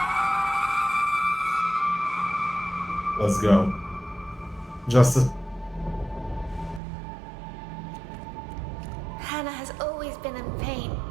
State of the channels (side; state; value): left; drops out; at 6.8 s